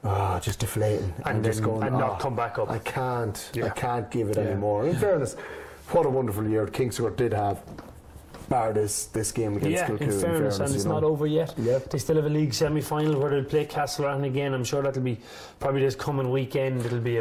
just deflating and just going, and not come back up. I can't give it anymore. In fairness, what a wonderful year Kings Court did have, bar this game against Kilcoo. In fairness, and it's not over yet. Yep. They still have a league semi-final where they'll play Castlereagh again. I'm sure that'll be probably this coming weekend. It'll be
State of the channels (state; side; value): identical; both; correlation 1.00